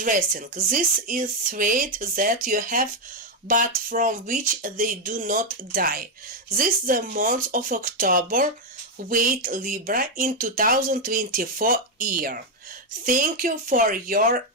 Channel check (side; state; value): both; normal; correlation 0.04